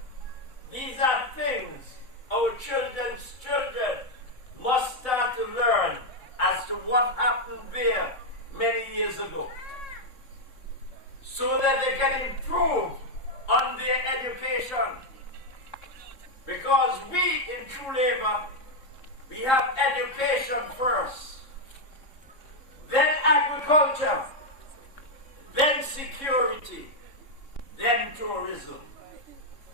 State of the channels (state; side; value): late; right; 3.6 ms